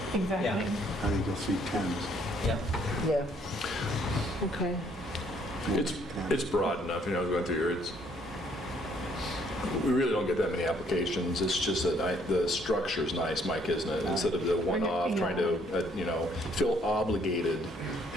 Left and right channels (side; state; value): both; normal; correlation 0.65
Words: Exactly. Yeah. I think you'll see tens. Yeah. Yeah. Okay. It's broad enough, going through here, we really don't get that many applications. It's just that the structure's nice, Mike, isn't it? Instead of the one-off, trying to, feel obligated